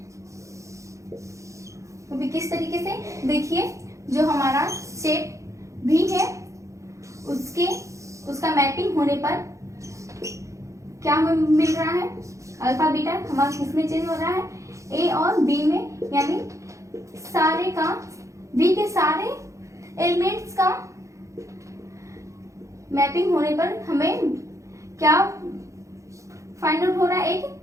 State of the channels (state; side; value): late; left; 0.15 ms